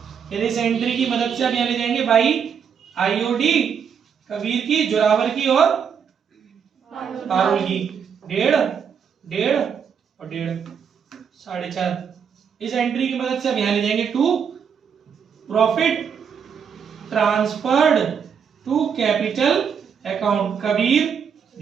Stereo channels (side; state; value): left; quieter; 7.2 dB